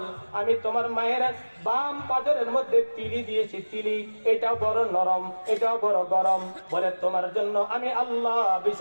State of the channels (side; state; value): both; inverted; correlation -1.00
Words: আমি তোমার মায়ের বাম পাজরের মধ্যে তিলি দিয়েছি, তিলি, এটাও বড় নরম, এটাও বড় গরম। বলে তোমার জন্য আমি আল্লাহ